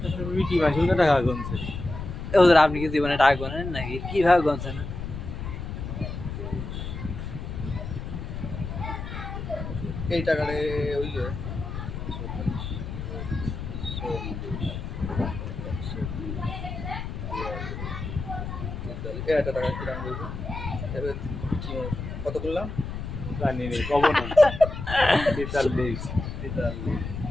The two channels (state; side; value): noise; left; rumble, 6 dB below the sound